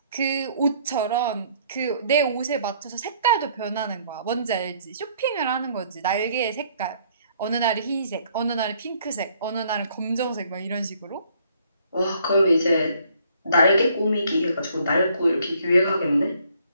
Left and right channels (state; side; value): inverted; both; correlation -0.63